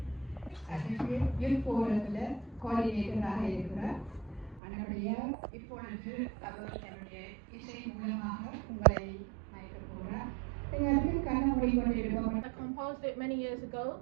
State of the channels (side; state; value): left; drops out; at 4.6 s